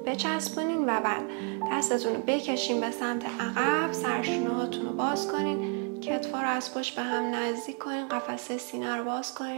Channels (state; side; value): quieter; left; 36.4 dB